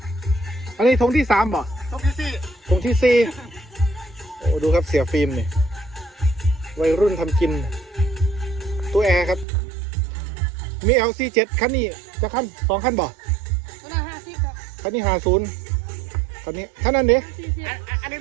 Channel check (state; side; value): drops out; left; at 9.5 s